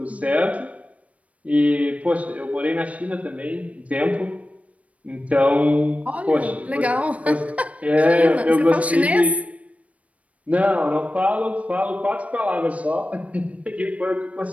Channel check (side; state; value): left; late; 0.066 ms